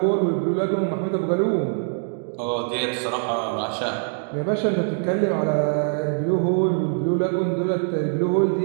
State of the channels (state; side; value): silent; left; 63 dB below the other